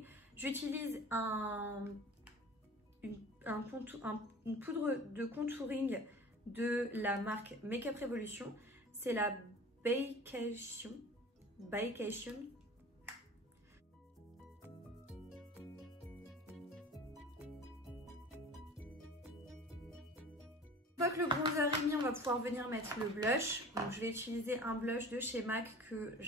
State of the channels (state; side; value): normal; both; correlation 0.41